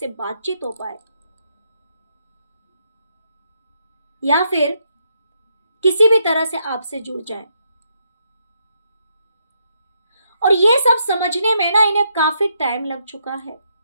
बातचीत हो पाए, या फिर किसी भी तरह से आपसे जुड़ जाए। और ये सब समझने में ना इन्हें काफी टाइम लग चुका है।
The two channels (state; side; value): inverted; both; correlation -0.77